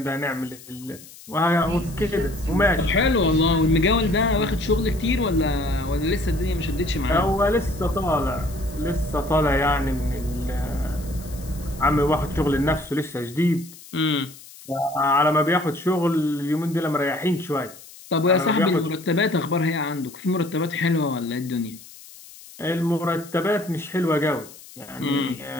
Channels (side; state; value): left; noise; hiss, 19 dB below the sound